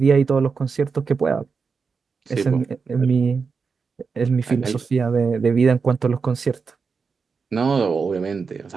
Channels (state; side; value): quieter; left; 5.2 dB